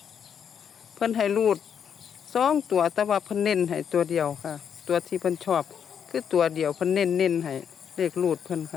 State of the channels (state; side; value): quieter; right; 7.9 dB